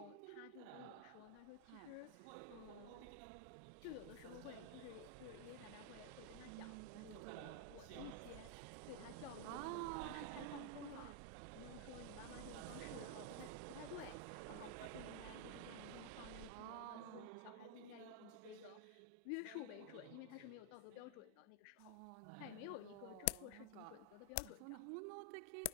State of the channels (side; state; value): both; different; correlation 0.00